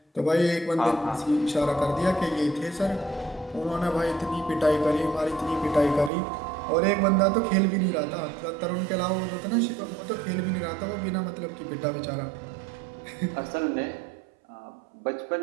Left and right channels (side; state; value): left; drops out; at 6.1 s